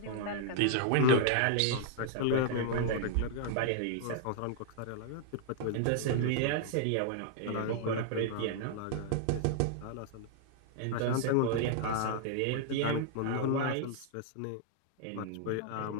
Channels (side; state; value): both; different; correlation -0.01